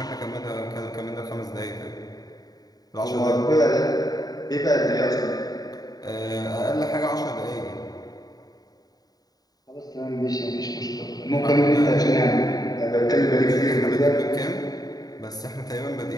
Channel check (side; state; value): right; late; 0.18 ms